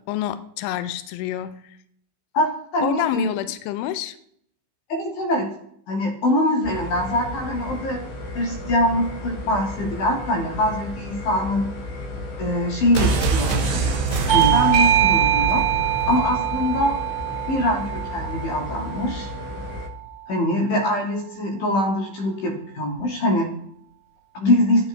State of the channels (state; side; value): late; right; 15 ms